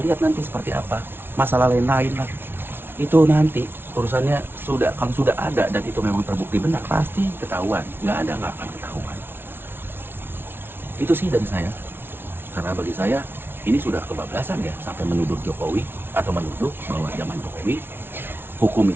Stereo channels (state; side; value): late; left; 0.11 ms